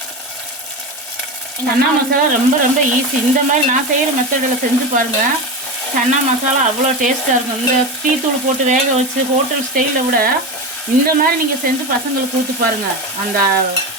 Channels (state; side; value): normal; both; correlation 0.21